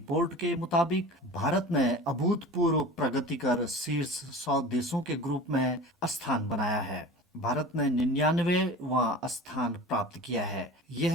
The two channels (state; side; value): normal; both; correlation 0.37